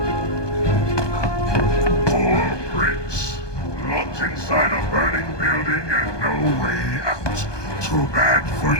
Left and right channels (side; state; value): right; late; 1.2 ms